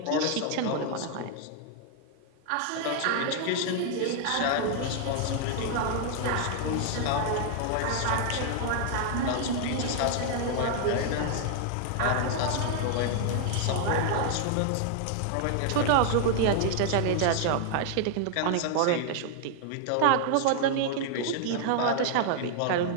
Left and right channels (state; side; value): different; both; correlation 0.00